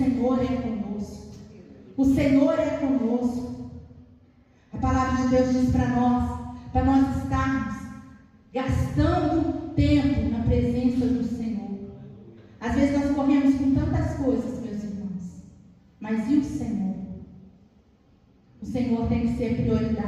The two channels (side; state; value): both; identical; correlation 1.00